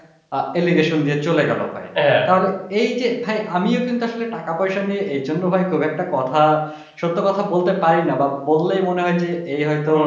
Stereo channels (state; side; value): identical; both; correlation 1.00